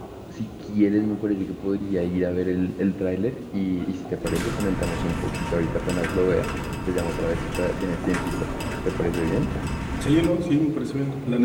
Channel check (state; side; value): identical; both; correlation 1.00